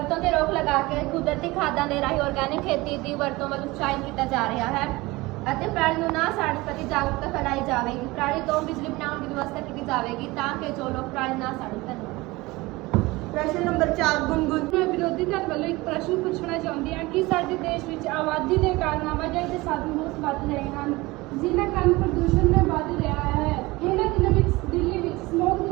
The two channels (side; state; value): left; quieter; 21.5 dB